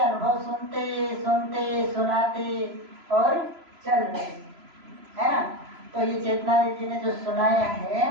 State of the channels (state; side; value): late; left; 3.0 ms